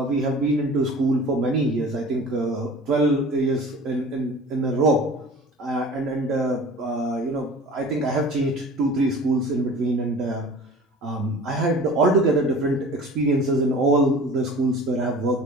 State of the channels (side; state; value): both; normal; correlation 0.42